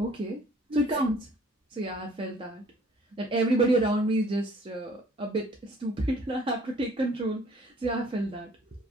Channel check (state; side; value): normal; both; correlation 0.57